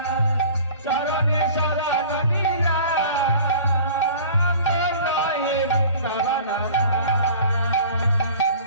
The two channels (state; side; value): inverted; both; correlation -0.44